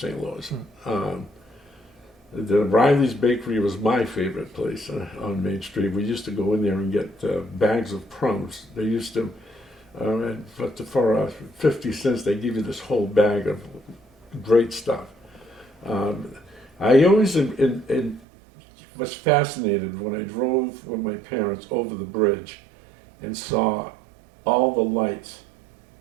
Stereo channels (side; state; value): left; drops out; at 18.2 s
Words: Louis. The Riley's Bakery was my favorite place on Main Street. We used to go in there and get bags of crumbs. They used to, for 50 cents, they give you this whole bag of great stuff. I always was fascinated when I drove with my parents over the bridge and saw all the lights